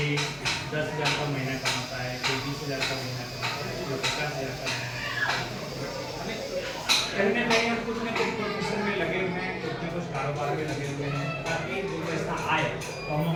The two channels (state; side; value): identical; both; correlation 1.00